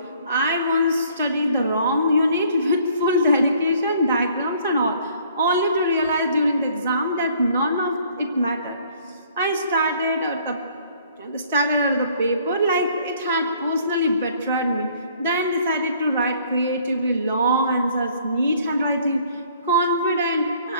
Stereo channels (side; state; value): both; inverted; correlation -0.59